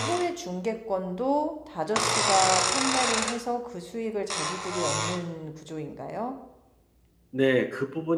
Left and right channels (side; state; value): both; identical; correlation 1.00